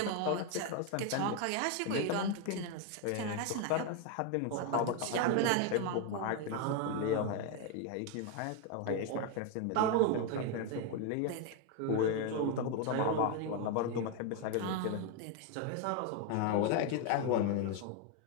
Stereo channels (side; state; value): both; different; correlation 0.01